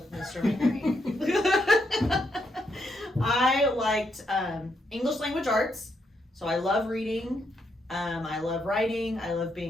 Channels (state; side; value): normal; both; correlation 0.78